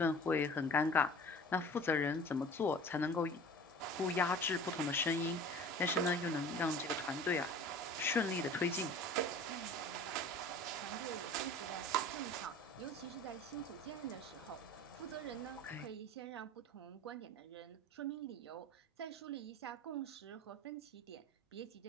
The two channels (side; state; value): both; normal; correlation 0.42